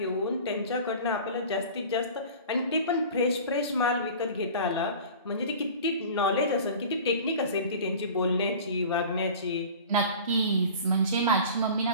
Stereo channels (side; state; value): both; inverted; correlation -0.39